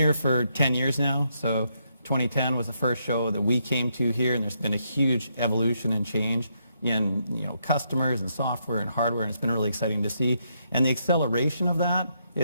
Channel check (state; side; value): inverted; both; correlation -0.77